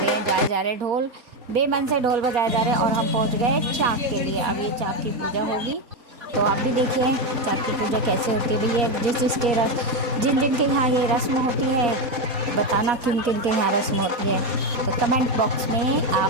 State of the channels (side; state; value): left; late; 4.2 ms